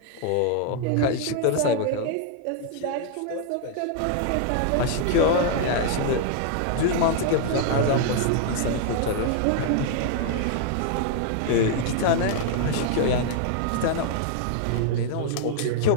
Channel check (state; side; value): different; both; correlation 0.00